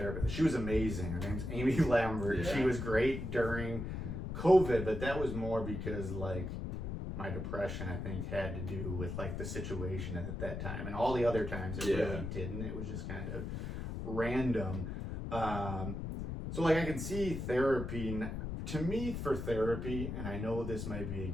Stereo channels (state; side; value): noise; left; rumble, 5 dB below the sound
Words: She was amazing. Her name's Amy Lambert. She was great during COVID, but that was more because, like, my depression, I think, had to do with like the situation at that time, and all the other times it really didn't. It was just kind of random. So like, I can see therapy. To me, for therapy, and I know this might be